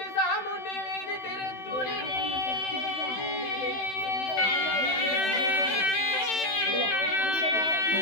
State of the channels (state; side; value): late; right; 16 ms